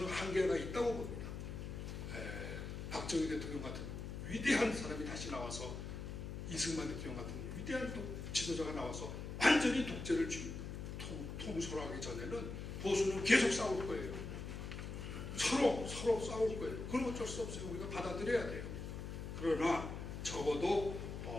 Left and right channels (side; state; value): left; noise; hum, 7 dB below the sound